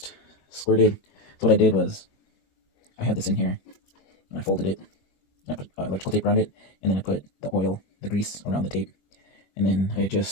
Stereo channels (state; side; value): late; right; 21 ms